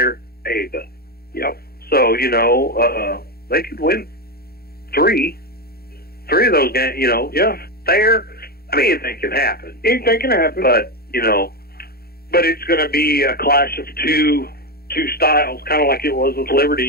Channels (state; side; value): late; right; 0.45 ms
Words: Ava. Yep. So you know, they could win 3 of those games. You know, Thayer. I mean, anything can happen. Anything can happen. But you know, but it's going to be a clash of two styles, kind of like it was with Liberty.